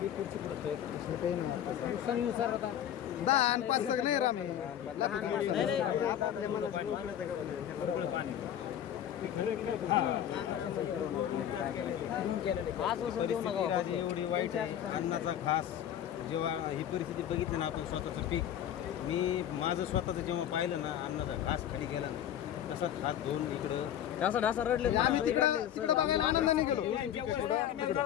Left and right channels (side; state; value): right; quieter; 10.5 dB